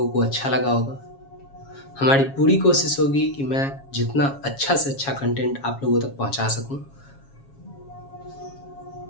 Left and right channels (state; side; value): late; right; 7.3 ms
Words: को अच्छा लगा होगा। हमारी पूरी कोशिश होगी कि मैं जितना अच्छा से अच्छा कंटेंट आप लोगों तक पहुँचा सकूँ।